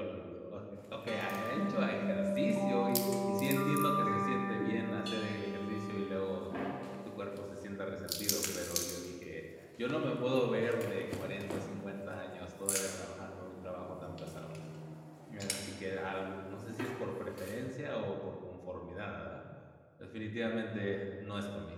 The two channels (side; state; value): both; identical; correlation 1.00